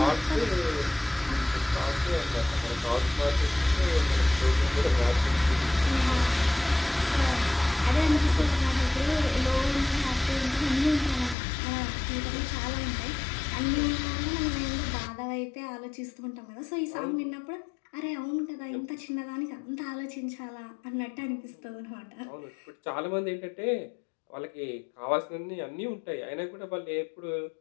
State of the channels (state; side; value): drops out; right; at 11.4 s